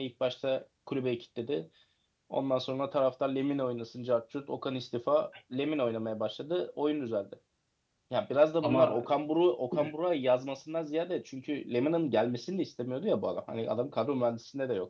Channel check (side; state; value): both; identical; correlation 1.00